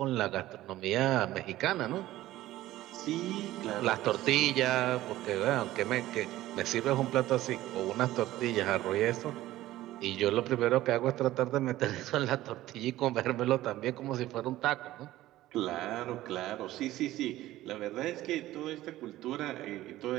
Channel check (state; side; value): quieter; left; 15.5 dB